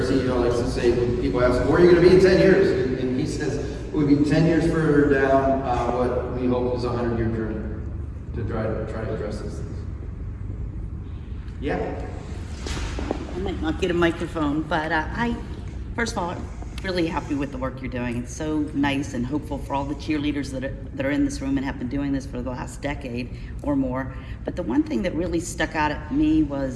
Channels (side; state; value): both; identical; correlation 1.00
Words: likes to say, when people ask, where are you going to be in 10 years? And he says, we'll be 10 years further down what we hope is a 100-year journey to try to address these things. Yeah. I might not get a microphone, but first of all, I'm really happy with the work you're doing. It's so nice and hopeful for all the cheerleaders that are in this room and have been doing this for the last decade or more. But the one thing that really stuck out at me